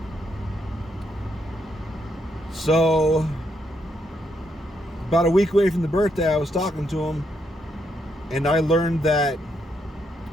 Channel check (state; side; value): normal; both; correlation 0.78